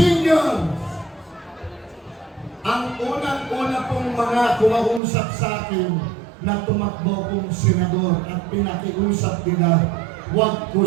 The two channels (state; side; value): drops out; left; at 5.0 s